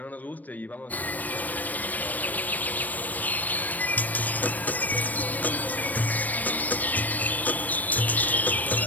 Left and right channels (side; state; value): right; late; 0.082 ms